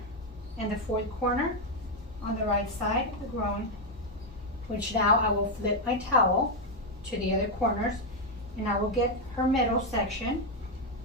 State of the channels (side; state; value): both; normal; correlation 0.03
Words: and the 4th corner on the right side of the groin, which now I will flip my towel to the other corners, and I will get her middle section